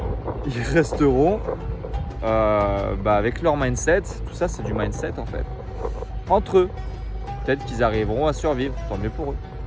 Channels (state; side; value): identical; both; correlation 1.00